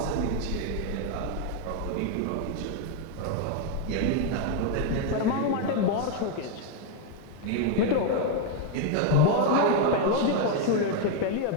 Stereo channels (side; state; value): both; different; correlation 0.01